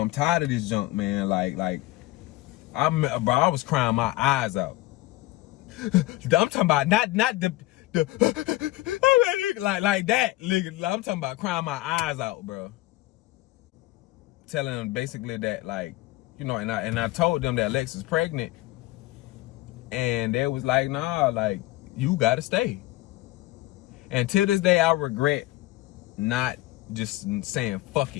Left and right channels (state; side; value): quieter; right; 18.1 dB